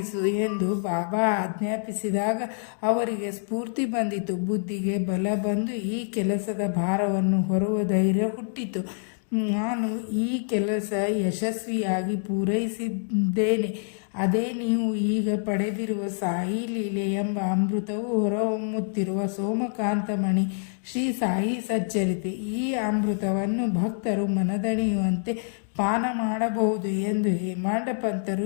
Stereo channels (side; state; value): right; silent; digital silence